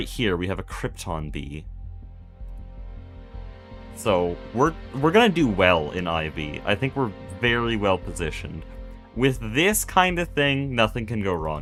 here, we have a krypton bee. So, we're gonna do well in IV. I think we're very well positioned. With this kind of thing, nothing can go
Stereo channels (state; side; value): identical; both; correlation 1.00